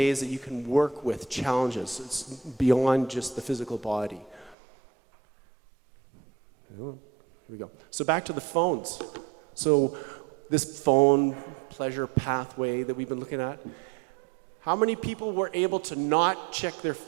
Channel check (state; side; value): drops out; left; at 4.5 s